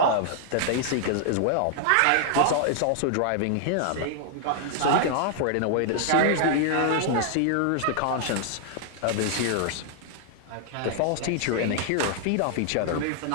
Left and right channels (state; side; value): different; both; correlation 0.00